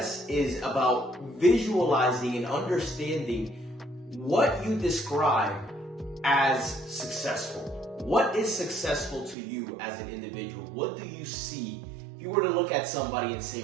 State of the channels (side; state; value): left; drops out; at 9.3 s